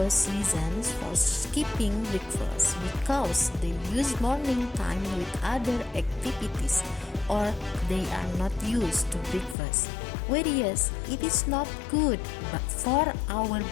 reasons for skipping breakfast because they use morning time with other activities or they are not used to breakfast. Whereas it is not good but for our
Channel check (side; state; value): right; drops out; at 9.6 s